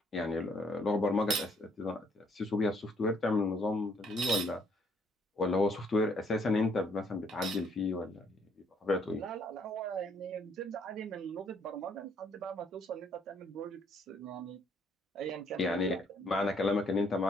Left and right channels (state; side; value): normal; both; correlation 0.67